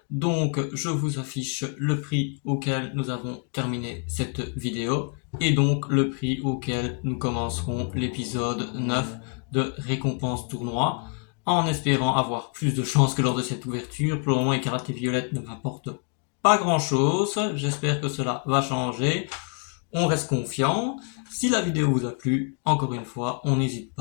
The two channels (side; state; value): right; quieter; 38.4 dB